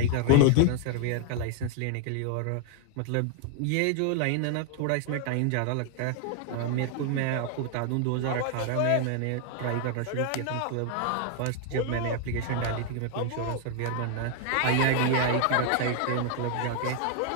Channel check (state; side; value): different; both; correlation 0.00